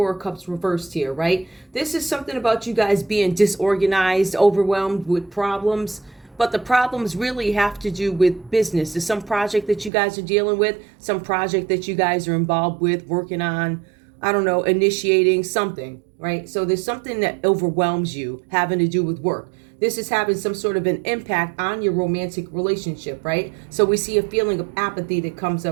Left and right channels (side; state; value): left; drops out; at 9.9 s